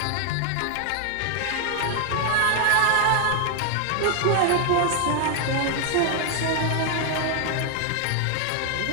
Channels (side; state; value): both; different; correlation 0.00